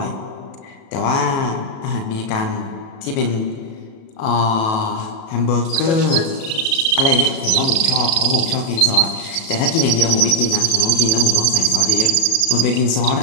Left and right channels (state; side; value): late; right; 37 ms